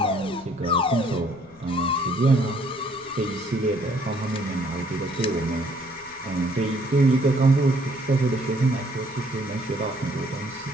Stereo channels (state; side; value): noise; left; rumble, 27 dB below the sound